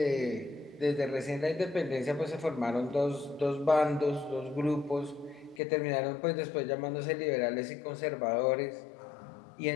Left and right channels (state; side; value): drops out; right; at 5.6 s